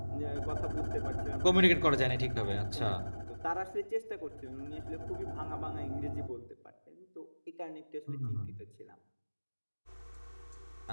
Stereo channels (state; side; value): inverted; both; correlation -1.00